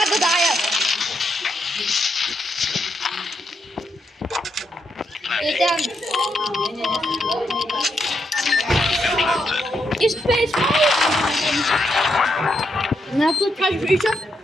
даю. Это... И спейс. На тут как еще?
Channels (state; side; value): normal; both; correlation 0.80